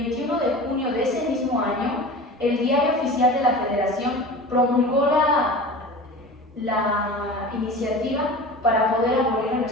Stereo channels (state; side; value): normal; both; correlation 0.35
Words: de junio de ese mismo año el Diario Oficial de la Federación promulgó la iniciativa para poder abolir en